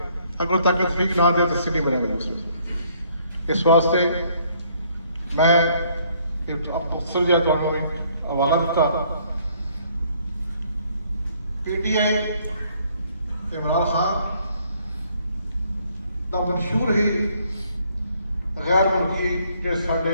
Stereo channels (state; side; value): inverted; both; correlation -0.65